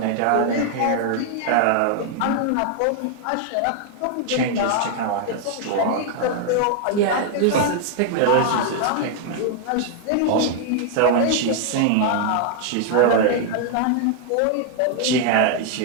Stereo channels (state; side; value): different; both; correlation 0.00